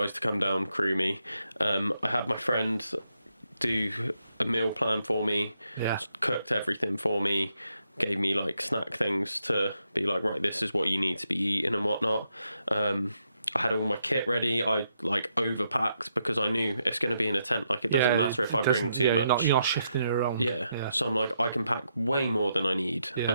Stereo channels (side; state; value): both; inverted; correlation -0.80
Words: to come down, crew me. I had my friend do a meal plan for me. Cooked everything for me. Gave me like snack things to be like, right, this is what you need to be eating and whatnot. I had all my kit ready. I like overpacked because I knew it's going to be in a tent. Like it doesn't matter if I bring too much. You're not shifting it around. Yeah. So I'm like, I can pack way more than I need and